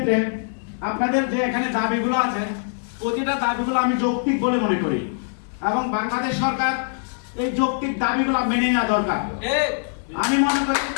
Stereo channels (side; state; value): right; silent; digital silence